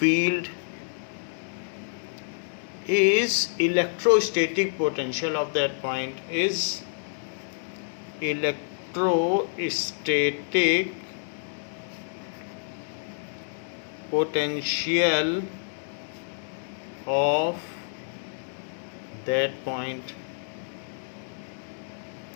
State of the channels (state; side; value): silent; right; digital silence